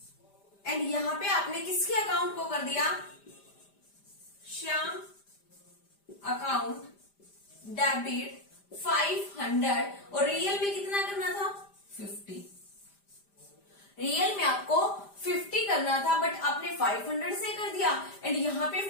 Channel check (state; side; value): late; right; 5.0 ms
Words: एंड यहां पे आपने किसके अकाउंट को कर दिया, श्याम अकाउंट डेबिट 500, और रियल में कितना करना था, 50। रियल में आपको 50 करना था बट आपने 500 से कर दिया, एंड यहां पे